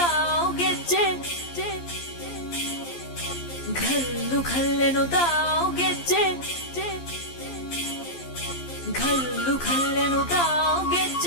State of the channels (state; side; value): late; right; 12 ms